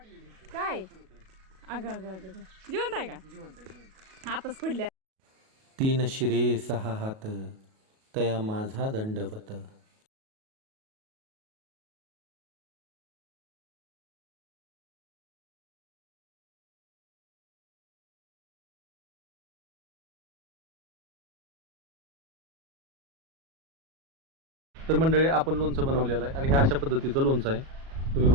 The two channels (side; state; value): left; late; 37 ms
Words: काय अगं अगं अगं जिवंत आहे का? हातच पडल्या. 3 शिरे 6 हात तया माझा दंडवत. तर मंडळी आपण लोणचं बनवलेलं आहे आणि हे अशा पद्धतीचं लोणचं आहे. तुम्ही